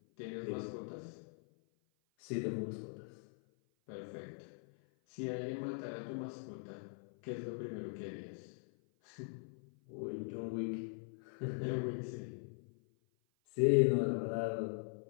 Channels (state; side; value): silent; right; 50 dB below the other